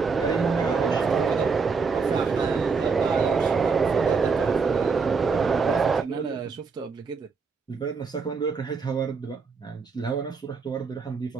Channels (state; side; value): quieter; left; 5.0 dB